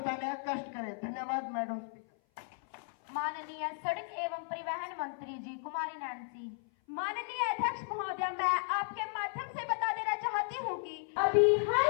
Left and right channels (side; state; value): right; silent; 54 dB below the other